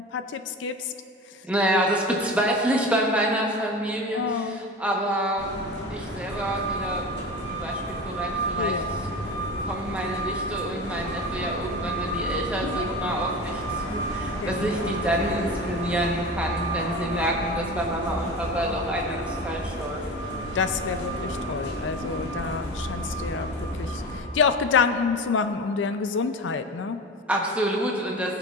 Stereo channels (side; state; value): both; normal; correlation 0.30